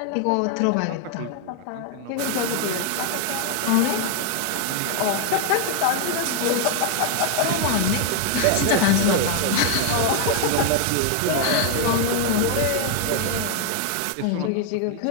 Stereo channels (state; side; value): different; both; correlation 0.00